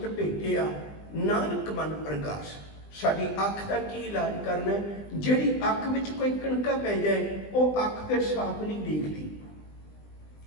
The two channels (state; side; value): late; right; 20 ms